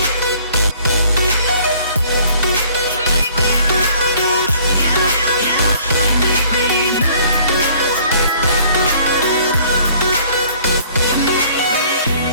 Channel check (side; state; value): both; inverted; correlation -0.57